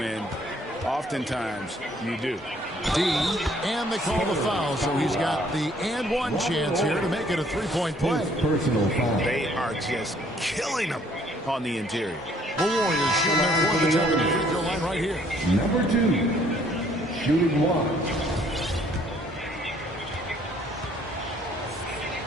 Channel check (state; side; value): normal; both; correlation 0.62